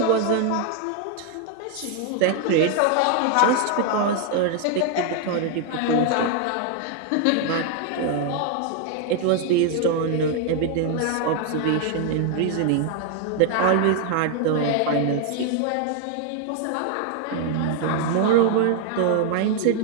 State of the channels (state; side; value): different; both; correlation 0.00